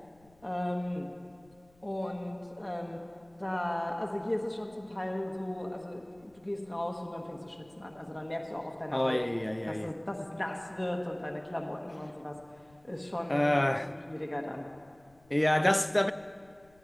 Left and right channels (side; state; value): left; noise; rumble, 29 dB below the sound